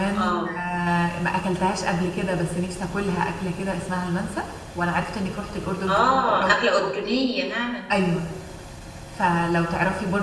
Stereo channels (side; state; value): both; identical; correlation 1.00